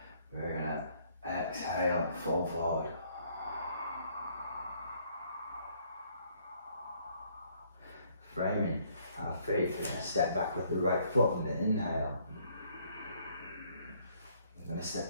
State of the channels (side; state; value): both; inverted; correlation -0.65